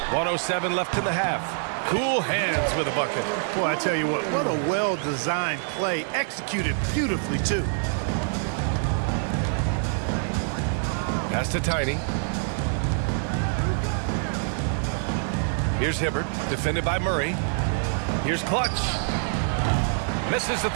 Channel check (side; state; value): left; silent; 61 dB below the other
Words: 107 left in the half. Cool Hands with a bucket. Boy, I tell you what a well-designed play. Executed beautifully, too. Pass to Tiny. Here's Hibbert, defended by Murray. Here's Clutch. Misses the